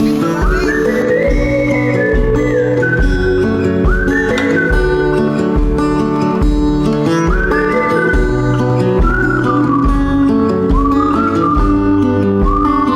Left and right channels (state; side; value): identical; both; correlation 1.00